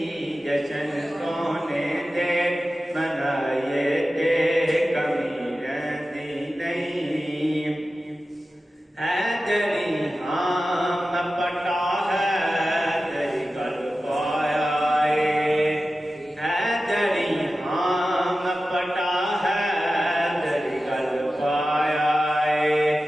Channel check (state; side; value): normal; both; correlation 0.94